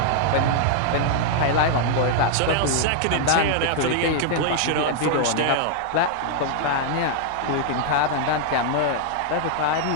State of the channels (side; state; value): both; different; correlation -0.01